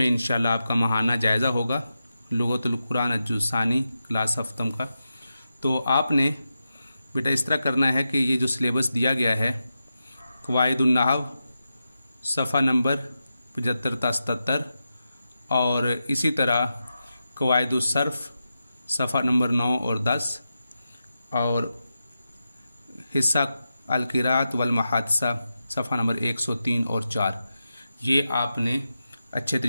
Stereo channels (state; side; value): inverted; both; correlation -0.90